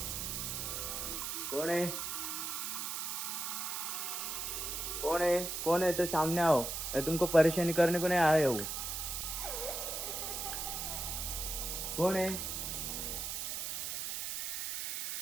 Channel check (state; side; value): noise; right; hiss, 3 dB below the sound